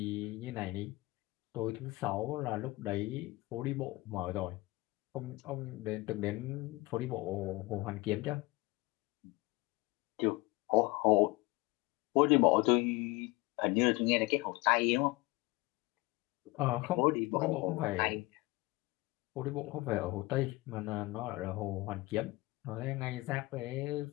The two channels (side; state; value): right; quieter; 21.9 dB